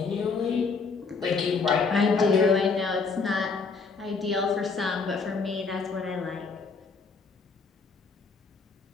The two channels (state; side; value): quieter; right; 4.7 dB